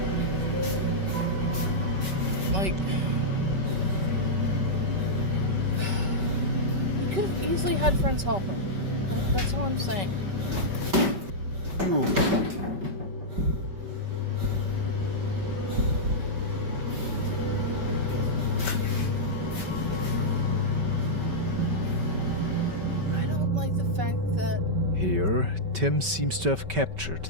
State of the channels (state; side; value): late; left; 5.2 ms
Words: Like, you could have easily had friends help him. That's all I'm saying. You. Here, Tim seems to have captured